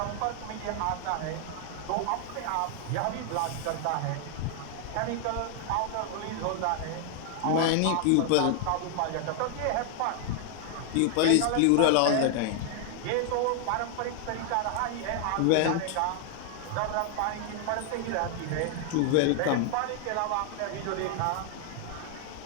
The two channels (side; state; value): both; different; correlation 0.00